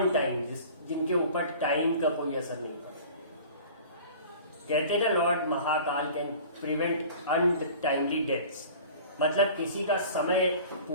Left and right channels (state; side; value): inverted; both; correlation -0.43